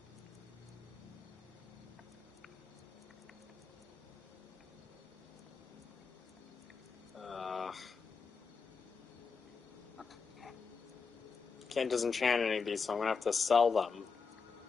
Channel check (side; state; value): right; quieter; 5.3 dB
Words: Can't disenchant any of these, so I'm gonna have to sell them.